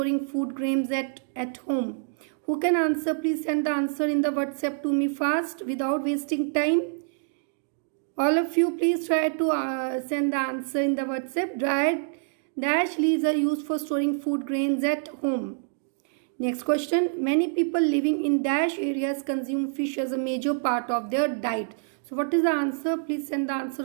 food grains at home. Who can answer? Please send the answer in the WhatsApp to me fast without wasting time. All of you, please try to send the answer in the WhatsApp. Dried dash leaves are used for storing food grains at home. Next question. Many people living in dash areas consume fish as a major part of their diet. So what is the answer? Please send the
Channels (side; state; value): left; silent; digital silence